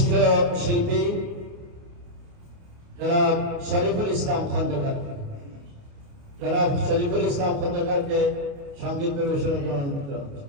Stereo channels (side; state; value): left; late; 29 ms